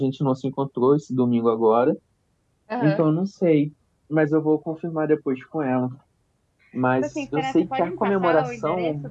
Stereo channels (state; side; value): identical; both; correlation 1.00